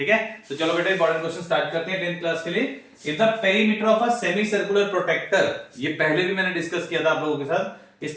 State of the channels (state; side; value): identical; both; correlation 1.00